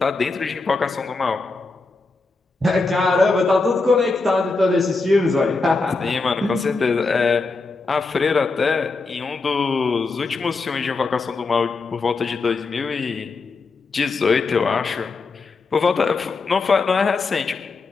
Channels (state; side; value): quieter; right; 3.9 dB